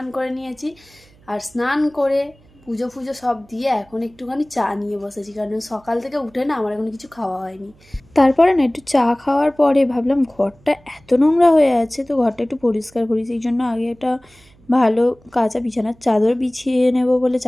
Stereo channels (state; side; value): noise; right; hum, 29 dB below the sound